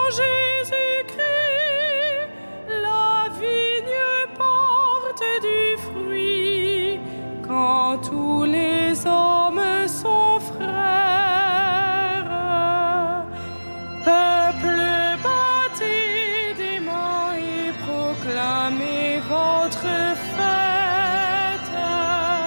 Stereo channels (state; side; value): inverted; both; correlation -1.00